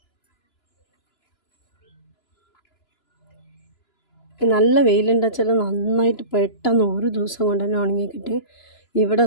നല്ല വെയിലുണ്ടെന്ന് വെച്ചാൽ നന്നായിട്ട് പെട്ടെന്ന് ഒരു ദിവസം കൊണ്ട് തന്നെ ഉണങ്ങി കിട്ടി. ഇവിടെ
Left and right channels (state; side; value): late; right; 2.9 ms